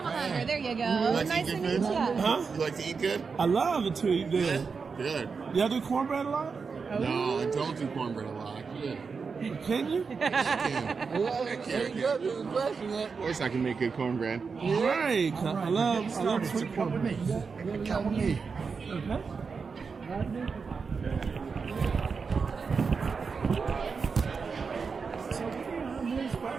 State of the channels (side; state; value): left; quieter; 5.2 dB